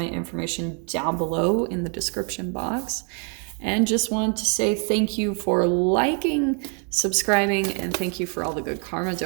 information down below in the description box. And just want to say thank you for liking, subscribing, and thank you for all the good karma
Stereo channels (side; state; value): left; quieter; 38.9 dB